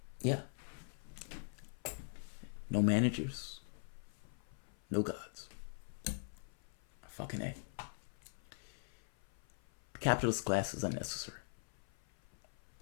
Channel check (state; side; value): silent; right; 50 dB below the other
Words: Yeah. No managers. No gods. Fucking A. The capitalist class is unnecessary.